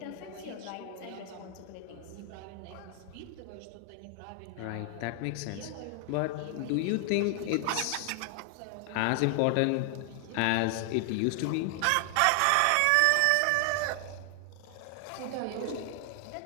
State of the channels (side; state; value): both; different; correlation 0.00